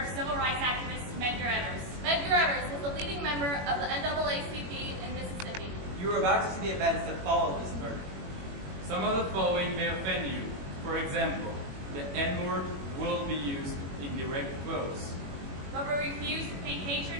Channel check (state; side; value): late; left; 21 ms